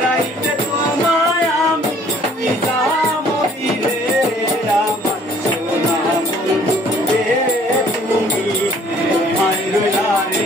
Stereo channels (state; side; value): normal; both; correlation 0.58